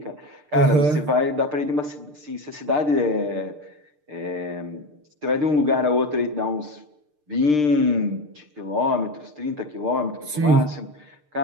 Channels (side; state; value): left; late; 6.7 ms